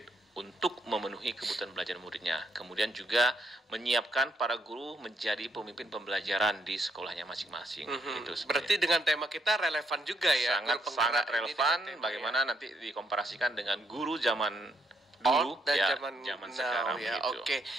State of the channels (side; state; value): both; normal; correlation 0.75